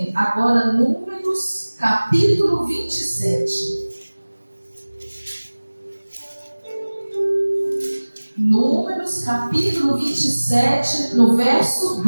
agora Números, capítulo 27. Números, capítulo 27, no verso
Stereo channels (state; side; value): inverted; both; correlation -1.00